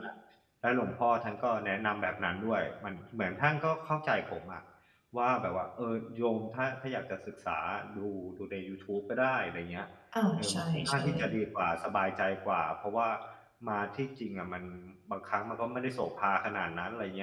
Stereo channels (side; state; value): both; identical; correlation 1.00